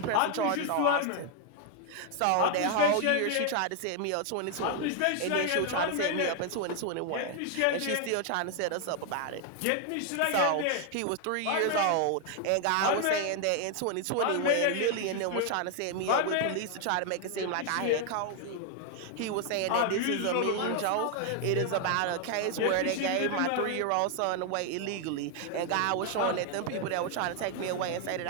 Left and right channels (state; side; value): different; both; correlation 0.00